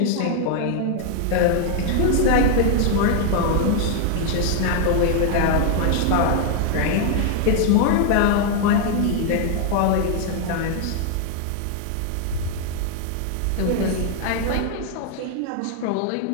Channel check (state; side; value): different; both; correlation 0.00